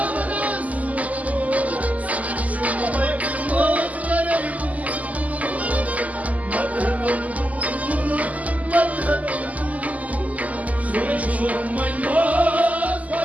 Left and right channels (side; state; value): left; late; 0.075 ms